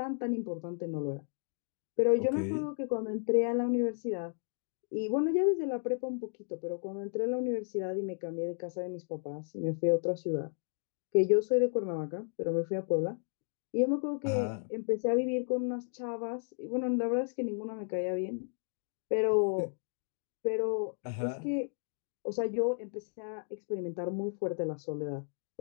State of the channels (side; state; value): right; silent; 55 dB below the other